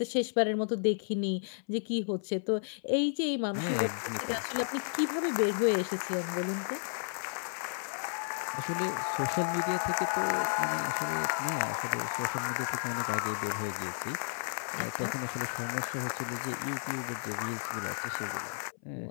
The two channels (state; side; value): silent; right; 56 dB below the other